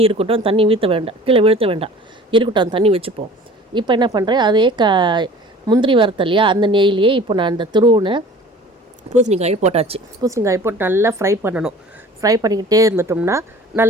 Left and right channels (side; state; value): both; normal; correlation 0.46